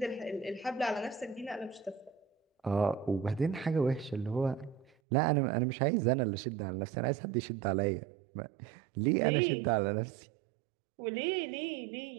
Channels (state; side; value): drops out; left; at 4.9 s